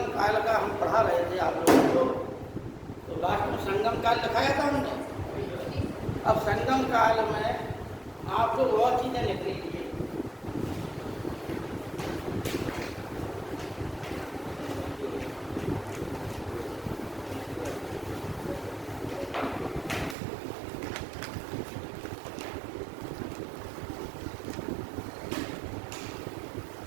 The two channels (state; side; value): drops out; left; at 20.2 s